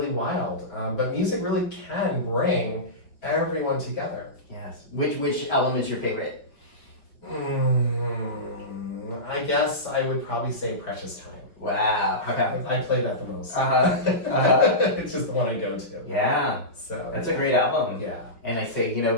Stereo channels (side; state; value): right; late; 5.0 ms